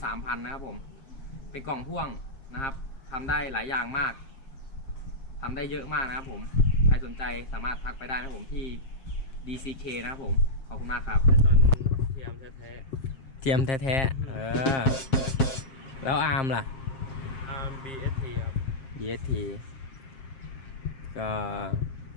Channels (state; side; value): late; right; 7.5 ms